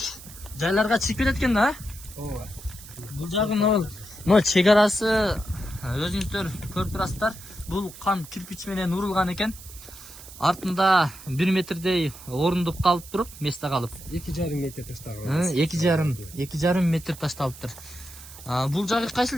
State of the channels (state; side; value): noise; right; hiss, 17 dB below the sound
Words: жайларга чыгып кетет экен да. Ооба. Бул жагы могул чек арасы өзүңүздөр көрүп турасыздар. Бул кам кирпич менен урулган экен. Артында 1 метрдей орундуп калып туруп, месте калып. 2,5 метр таштаган. 2,5 метр ташталыптыр. Бул жагы кайсыл